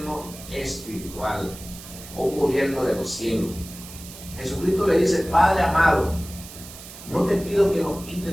espiritual, o un gobierno de los cielos. Jesucristo le dice: Padre amado, no te pido que los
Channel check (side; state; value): right; noise; hiss, 15 dB below the sound